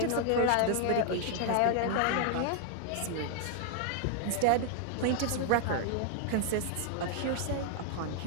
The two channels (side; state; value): both; different; correlation 0.00